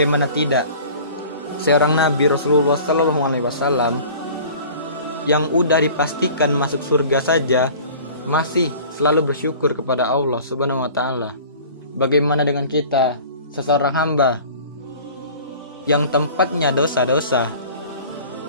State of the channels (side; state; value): both; inverted; correlation -0.44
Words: tidak? Seorang Nabi Rasulullah Sallallahu Alaihi Wasallam yang udah dipastikan masuk surga saja masih selalu bersyukur kepada Allah Subhanahu Wa Taala. Bagaimana dengan kita, seseorang hamba yang tempatnya dosa-dosa,